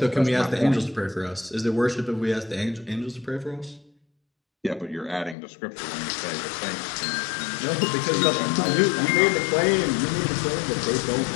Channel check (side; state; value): right; drops out; at 5.4 s